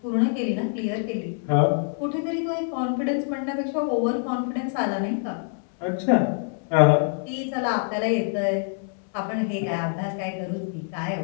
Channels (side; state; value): right; silent; 61 dB below the other